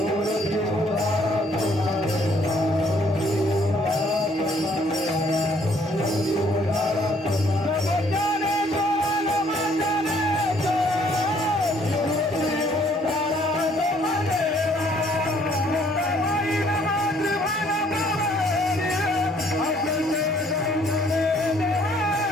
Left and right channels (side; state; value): both; normal; correlation 0.63